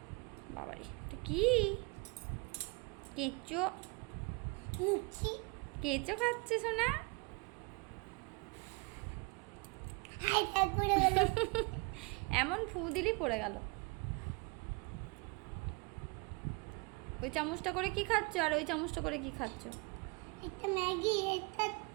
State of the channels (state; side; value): quieter; left; 29.7 dB